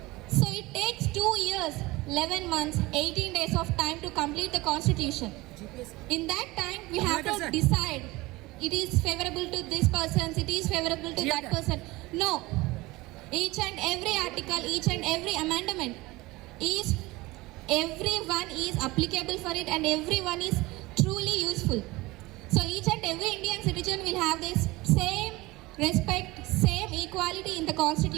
So it takes 2 years, 11 months, 18 days of time to complete the constitution. In that time, we have to decide it is favorable to this person, it is favorable to that person. No. Each and every article, each and every amendment is, everyone is applicable for it and everyone is truly useful. So each and every Indian citizen will have this same respect, same equality in the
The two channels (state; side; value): quieter; left; 20.9 dB